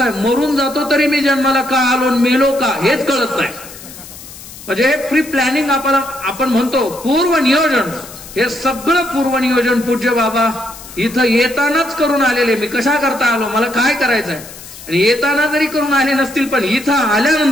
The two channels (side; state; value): left; noise; hiss, 16 dB below the sound